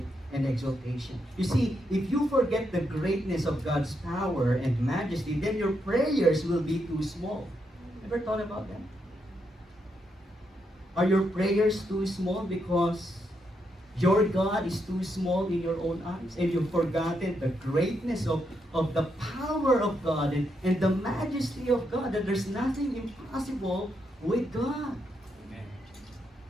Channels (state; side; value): normal; both; correlation 0.80